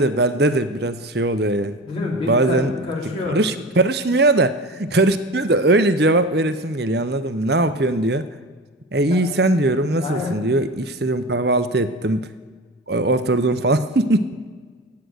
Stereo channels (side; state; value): both; normal; correlation 0.30